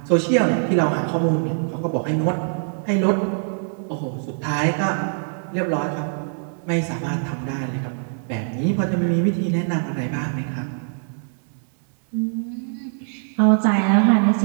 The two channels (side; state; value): left; silent; digital silence